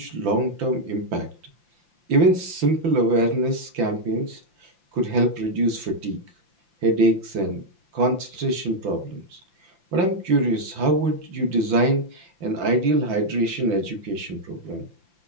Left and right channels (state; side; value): late; left; 5.8 ms